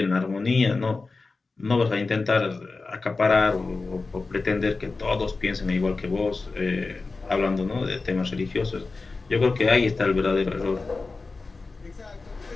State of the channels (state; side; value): quieter; right; 3.9 dB